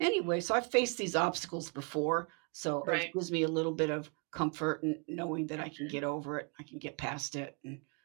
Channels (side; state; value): left; quieter; 35.8 dB